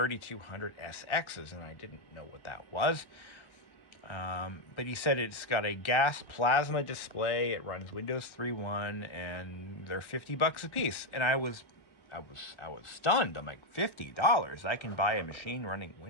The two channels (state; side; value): late; right; 1.1 ms